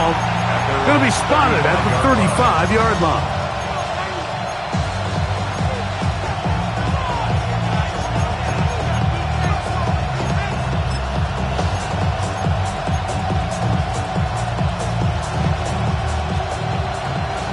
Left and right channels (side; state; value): both; identical; correlation 1.00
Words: going to be spotted at the 35-yard line.